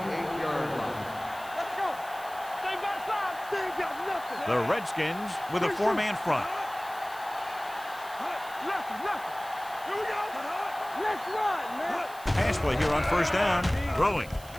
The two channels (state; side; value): noise; right; hiss, 18 dB below the sound